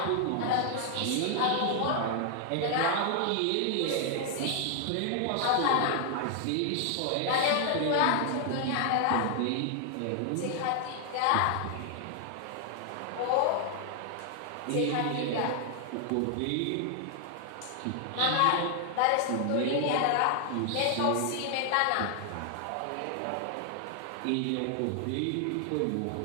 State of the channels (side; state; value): both; different; correlation 0.00